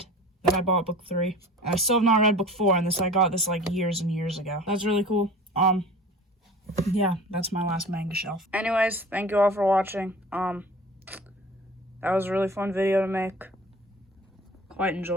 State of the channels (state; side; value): normal; both; correlation 0.41